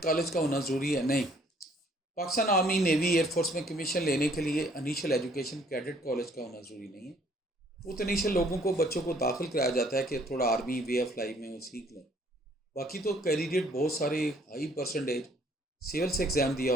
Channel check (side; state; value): both; normal; correlation 0.61